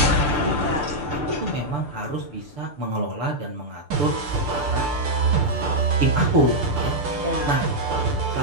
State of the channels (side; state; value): left; late; 6.8 ms